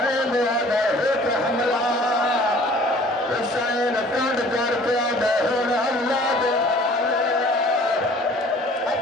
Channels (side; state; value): both; normal; correlation 0.51